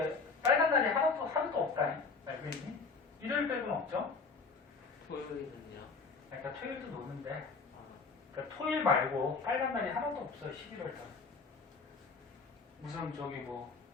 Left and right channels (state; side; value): quieter; right; 4.6 dB